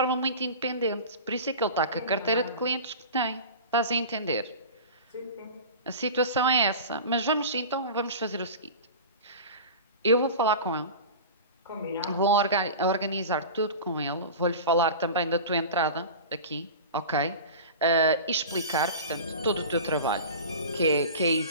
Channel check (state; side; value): inverted; both; correlation -0.33